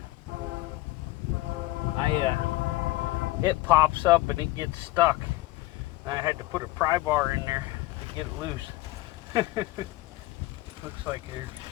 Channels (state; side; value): quieter; right; 19.1 dB